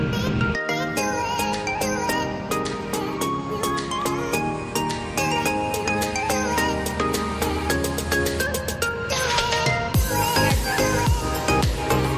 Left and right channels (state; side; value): identical; both; correlation 1.00